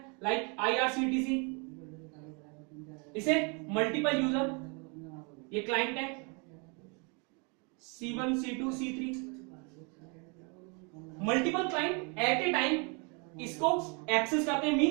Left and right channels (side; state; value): left; quieter; 33.3 dB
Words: लाइक IRCTC, इसे मल्टीपल यूजर, ये क्लाइंट है C1 C2 C3, multiple client at a time इसको एक्सेस करते हैं,